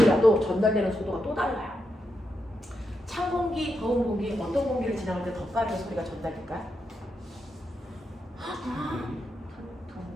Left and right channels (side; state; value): both; normal; correlation 0.85